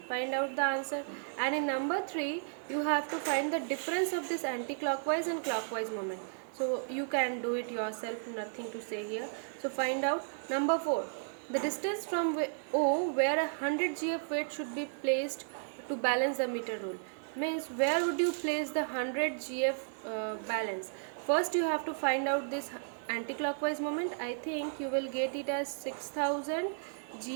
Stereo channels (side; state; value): left; silent; digital silence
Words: Find out the answer. And in number 3, you have to find the difference of this anti-clockwise and clockwise moment. So you can do it yourself, nothing to say here. So find out. Number 4, the distance from O where a 100 gf weight should be placed to balance the meter rule. Means where would you place the 100 gf balance? First you have to find out this anti-clockwise moment. I think you will get it as 6000